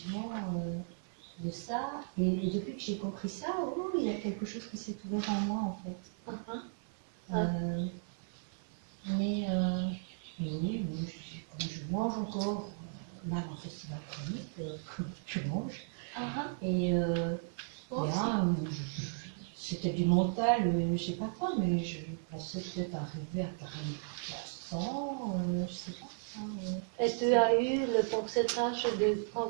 de ça. Et depuis que j'ai compris ça, oh, il y a quelque chose qui s'est ouvert en moi en fait. Mais oui, je mange encore, même en festival chronique, je mange. Et là, c'était du mental, je sais pas quoi, mais je pensais peut-être arriver à 40%, je sais pas. Et tu as eu le pourcentage de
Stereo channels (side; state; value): left; silent; 54 dB below the other